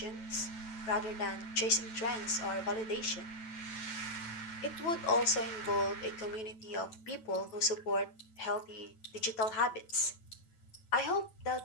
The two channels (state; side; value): late; right; 9.1 ms